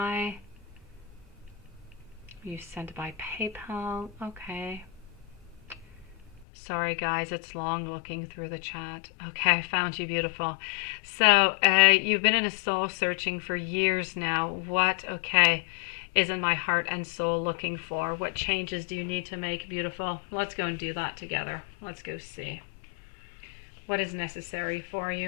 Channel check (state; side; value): drops out; right; at 6.5 s